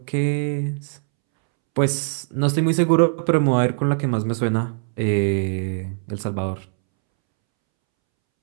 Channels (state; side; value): silent; left; 64 dB below the other